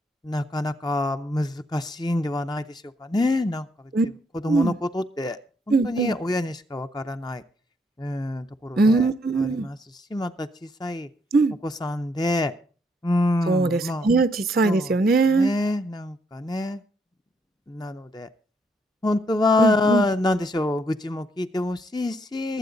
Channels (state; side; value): normal; both; correlation 0.72